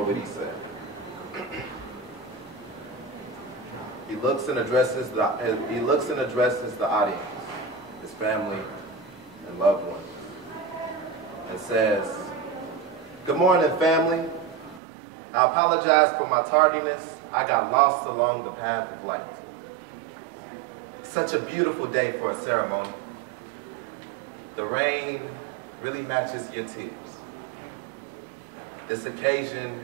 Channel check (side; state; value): left; drops out; at 14.8 s